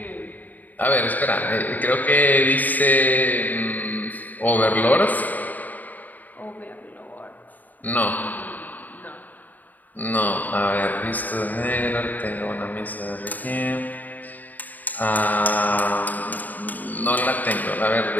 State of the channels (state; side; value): late; right; 0.083 ms